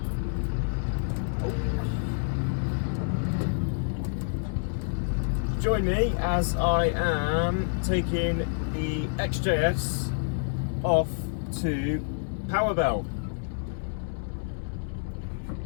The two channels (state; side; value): silent; right; digital silence